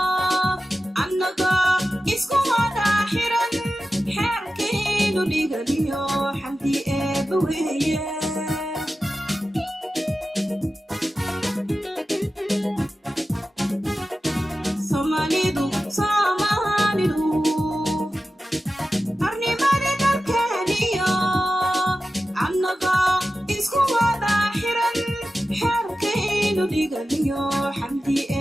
annaga dhigaliyo xamdi eebba weeye Somalidu arnimada dalkeeniyo annaga isku wada xiran xeerkaynu dhigaliyo xamdi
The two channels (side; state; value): both; normal; correlation 0.93